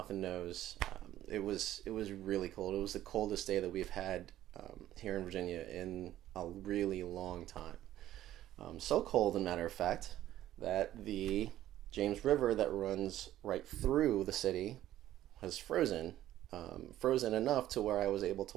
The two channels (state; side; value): quieter; left; 13.3 dB